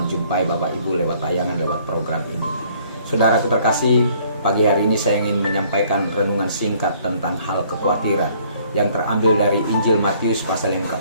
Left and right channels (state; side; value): inverted; both; correlation -0.61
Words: Bapak Ibu lewat tayangan, lewat program ini. Saudaraku terkasih, pagi hari ini saya ingin menyampaikan renungan singkat tentang hal kekhawatiran yang terambil dari Injil Matius pasal yang